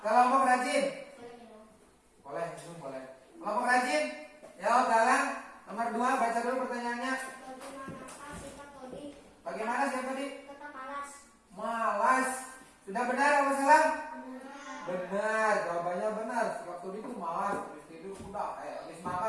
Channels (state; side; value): identical; both; correlation 1.00